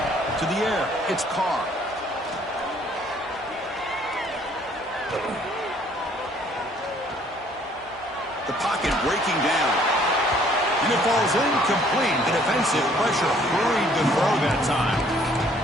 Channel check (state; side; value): normal; both; correlation 0.61